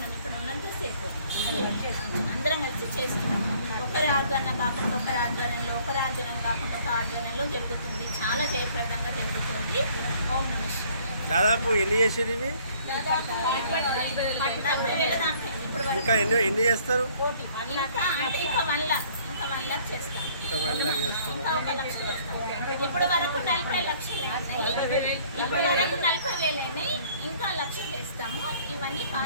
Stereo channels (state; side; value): inverted; both; correlation -0.58